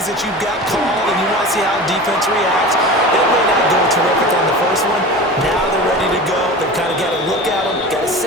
that you've got called and you want to see how defense reacts. It may not go terrific on the first one. Now they're ready to go. They've kind of got a look at them, got a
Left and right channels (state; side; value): normal; both; correlation 0.33